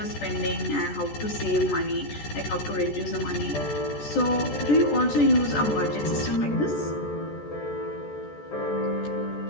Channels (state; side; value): late; right; 14 ms